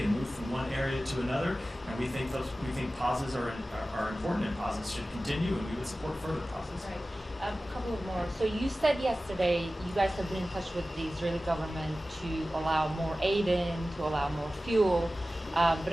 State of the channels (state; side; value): normal; both; correlation 0.96